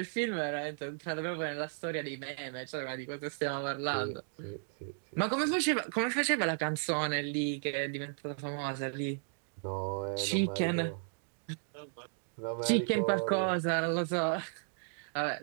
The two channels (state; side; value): silent; left; digital silence